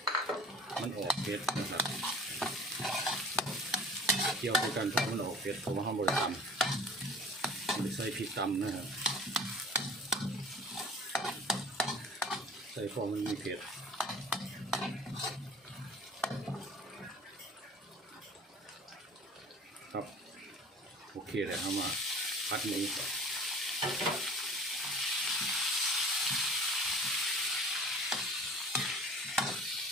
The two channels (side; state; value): both; normal; correlation 0.45